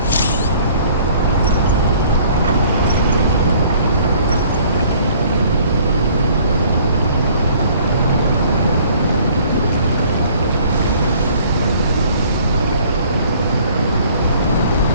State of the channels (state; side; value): inverted; both; correlation -0.56